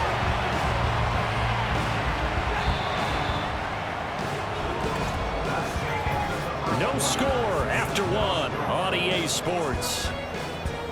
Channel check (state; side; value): identical; both; correlation 1.00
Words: No score after 1 on EA Sports.